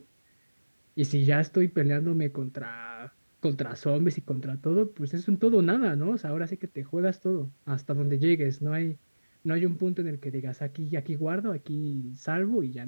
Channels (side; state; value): both; inverted; correlation -1.00